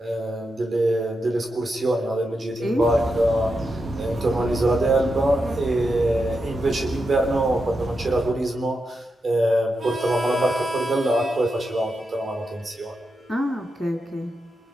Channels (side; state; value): both; normal; correlation 0.87